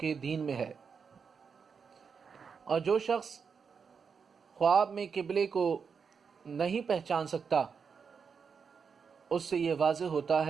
دین میں ہے۔ اور جو شخص خواب میں قبلے کو نہیں پہچان سکتا، اس سے یہ واضح ہوتا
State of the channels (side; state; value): left; quieter; 6.0 dB